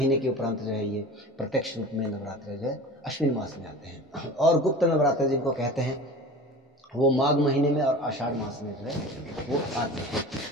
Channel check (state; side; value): normal; both; correlation 0.36